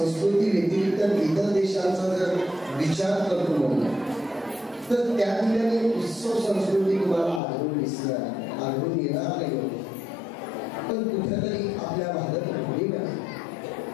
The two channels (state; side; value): drops out; right; at 7.4 s